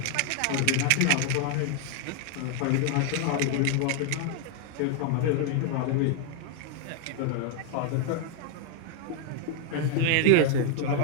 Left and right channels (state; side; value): different; both; correlation 0.00